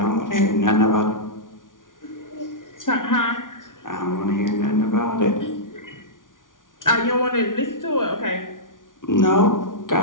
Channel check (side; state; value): right; late; 0.88 ms